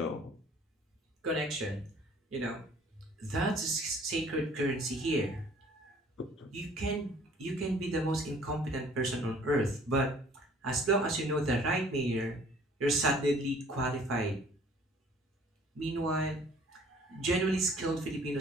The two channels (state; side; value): normal; both; correlation 0.55